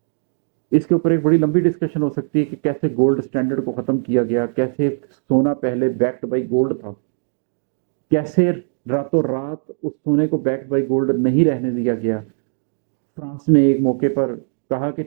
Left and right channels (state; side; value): silent; left; digital silence